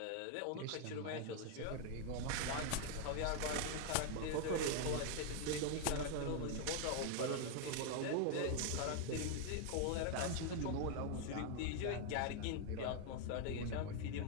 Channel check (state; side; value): different; both; correlation 0.00